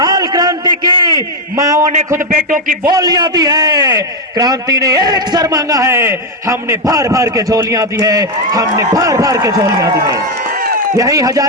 क्रांति की, माओं ने खुद बेटों की बोलियां दी है। क्रांति ने एक सर मांगा है, हमने भर भर के झोलियां दी है, हमने भर भर के झोलियां दी है। यही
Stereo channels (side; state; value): both; normal; correlation 0.04